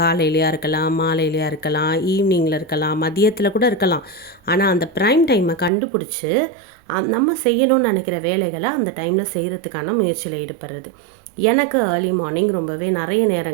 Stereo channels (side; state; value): left; drops out; at 5.7 s